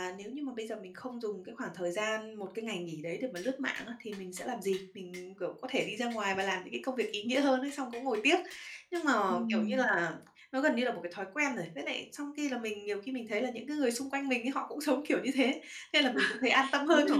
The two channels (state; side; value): identical; both; correlation 1.00